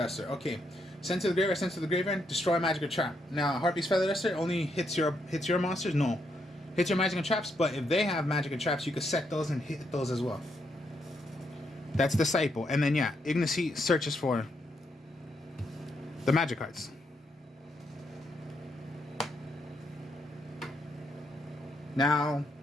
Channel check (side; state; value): both; normal; correlation 0.78